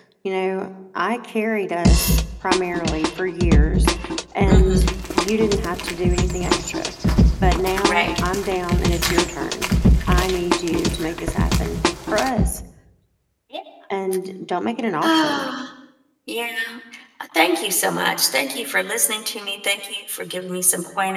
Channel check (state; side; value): identical; both; correlation 1.00